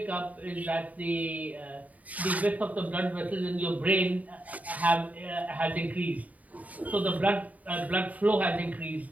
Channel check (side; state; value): left; late; 0.072 ms